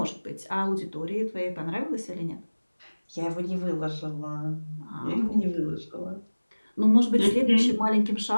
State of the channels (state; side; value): inverted; both; correlation -1.00